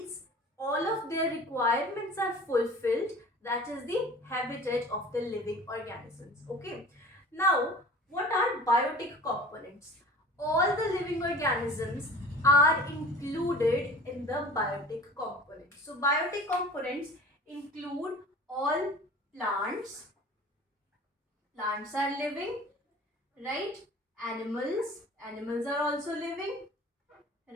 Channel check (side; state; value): both; normal; correlation 0.42